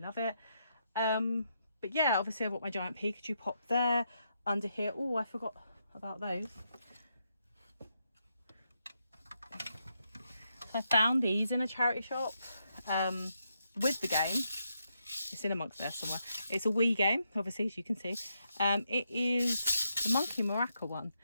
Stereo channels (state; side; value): inverted; both; correlation -0.81